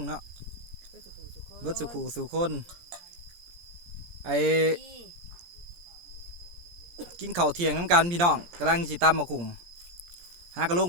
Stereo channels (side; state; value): left; late; 17 ms